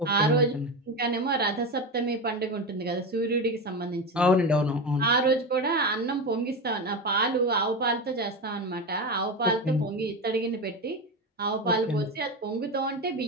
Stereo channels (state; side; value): normal; both; correlation 0.19